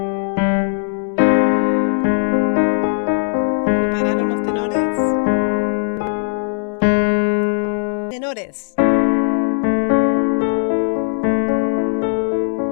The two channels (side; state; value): right; silent; 66 dB below the other